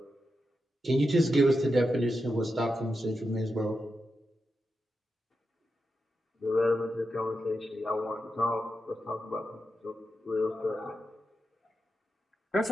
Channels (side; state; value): both; normal; correlation 0.88